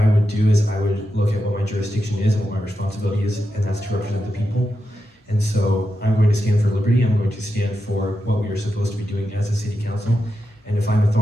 would do is I would look at what my jurisdiction is and what my responsibility is, and that's to represent the people. And so I'm going to stand for liberty. I'm going to stand for what we are supposed to be doing as a city council. And if I'm a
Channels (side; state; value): both; normal; correlation 0.88